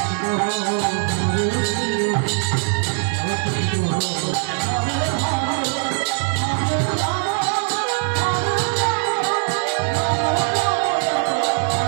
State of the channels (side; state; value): left; silent; 65 dB below the other